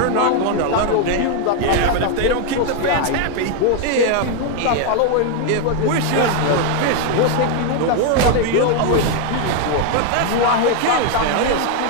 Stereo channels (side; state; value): both; different; correlation 0.01